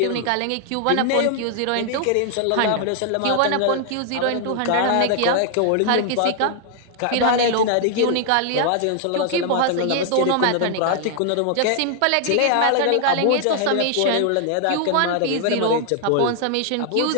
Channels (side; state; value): both; different; correlation 0.00